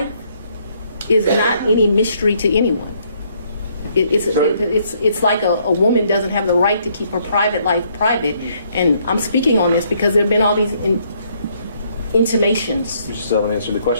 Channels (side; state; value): both; inverted; correlation -0.69